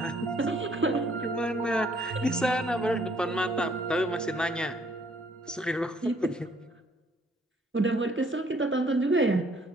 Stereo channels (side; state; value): both; normal; correlation 0.63